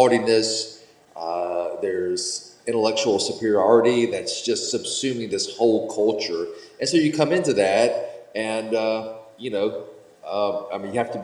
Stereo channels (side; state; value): both; identical; correlation 1.00